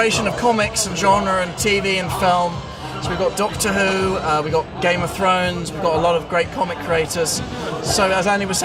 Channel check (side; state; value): both; identical; correlation 1.00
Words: of comics and genre and TV and film. So we've got Doctor Who, we've got Game of Thrones, we've got a lot of great comic creators. So as Andy was